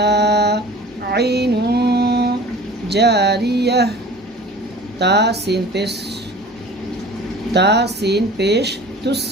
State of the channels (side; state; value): both; normal; correlation 0.42